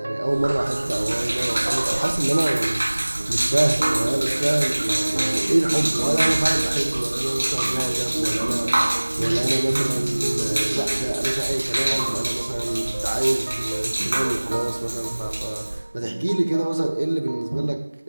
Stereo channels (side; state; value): both; inverted; correlation -1.00